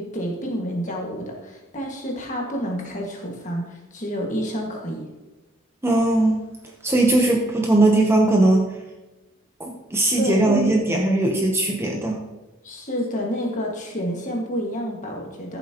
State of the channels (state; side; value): normal; both; correlation 0.69